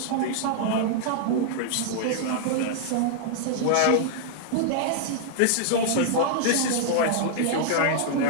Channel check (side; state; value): both; different; correlation -0.01